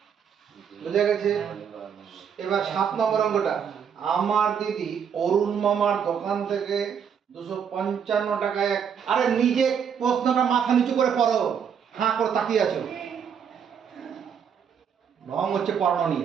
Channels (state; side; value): quieter; left; 7.5 dB